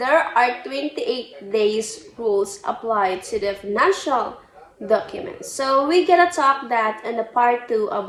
are 28 days rules applied to the financial documents. So we gonna talk that in the part 2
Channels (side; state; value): both; identical; correlation 1.00